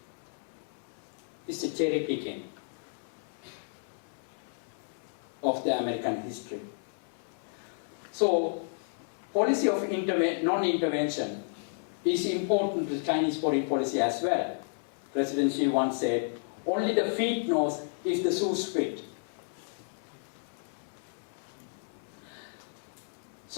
It's a cherry picking of the American history. So, policy of non-intervention is important to Chinese foreign policy as well. President Xi once said, only the feet knows if the shoes fit.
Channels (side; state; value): right; silent; 57 dB below the other